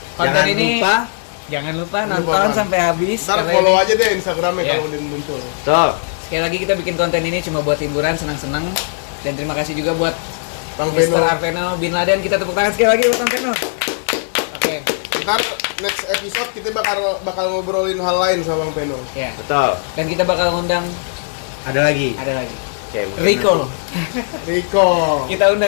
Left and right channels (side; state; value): right; silent; 55 dB below the other